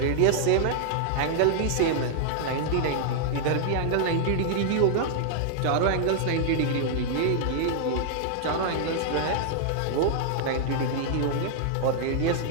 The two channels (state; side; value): different; both; correlation -0.01